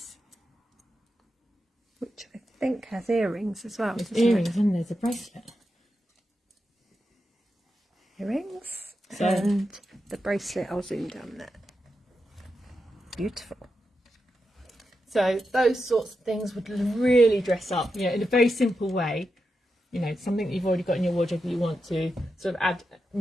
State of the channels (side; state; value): both; normal; correlation 0.88